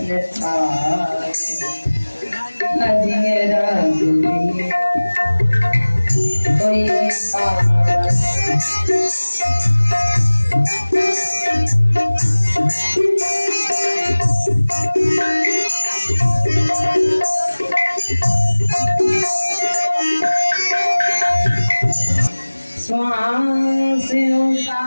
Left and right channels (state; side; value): inverted; both; correlation -1.00